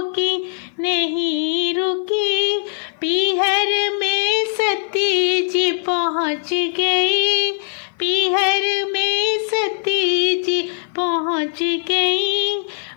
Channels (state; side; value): silent; right; 56 dB below the other